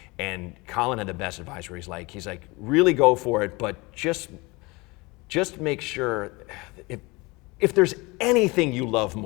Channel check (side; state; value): right; quieter; 24.8 dB